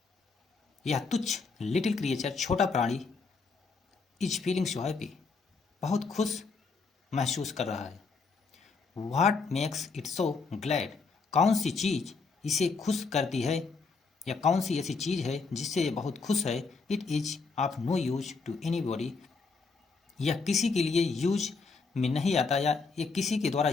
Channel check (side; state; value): right; quieter; 4.5 dB